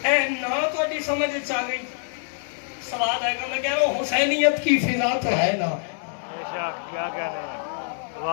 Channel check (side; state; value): right; silent; 62 dB below the other